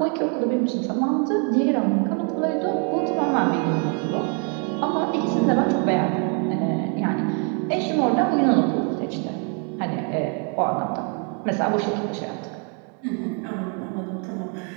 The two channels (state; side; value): quieter; left; 37.3 dB